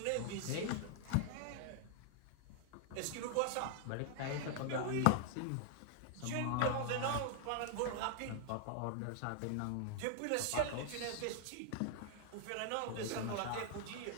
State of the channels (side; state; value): both; different; correlation 0.00